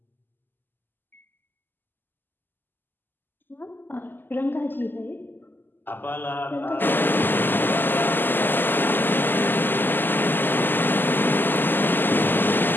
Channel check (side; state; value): right; late; 0.092 ms